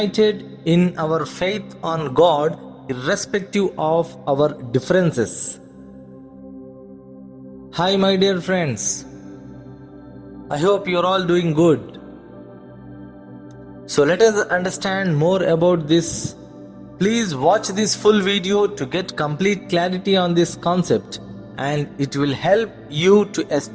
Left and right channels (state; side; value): identical; both; correlation 1.00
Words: in our faith on God irrespective of our differences. Hi, my dear friends. I hope you're all doing good. So let us understand more about this. Please watch this full video to get complete clarity on this concept, and it will help you to